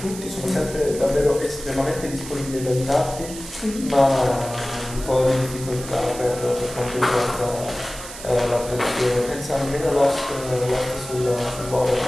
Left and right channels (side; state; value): right; noise; hiss, 12 dB below the sound